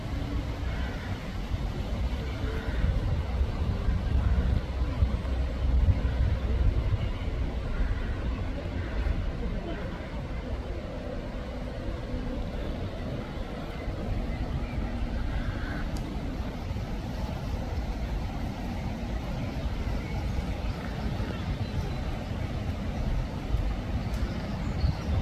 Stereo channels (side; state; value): both; identical; correlation 1.00